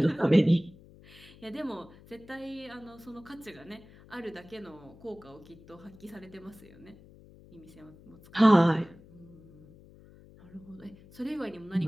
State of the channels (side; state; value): left; noise; hum, 22 dB below the sound